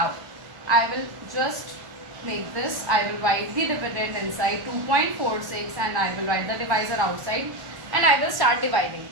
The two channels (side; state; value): left; late; 1.1 ms